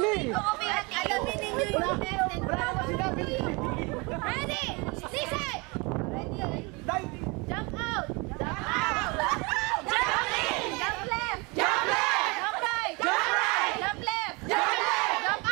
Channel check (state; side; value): quieter; left; 27.9 dB